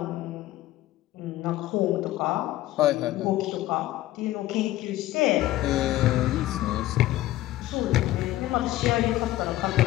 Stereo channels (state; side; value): quieter; right; 15.5 dB